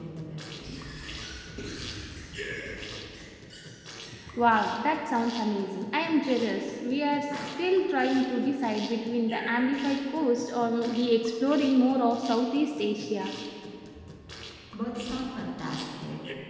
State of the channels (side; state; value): both; identical; correlation 1.00